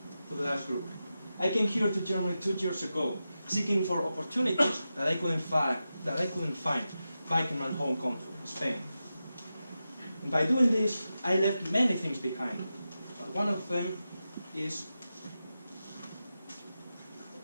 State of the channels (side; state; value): both; inverted; correlation -0.91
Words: to the last group. I came here to Germany 2 years ago, seeking for opportunities that I couldn't find back in my home country, Spain. And by doing this, I left many things behind. But one of them is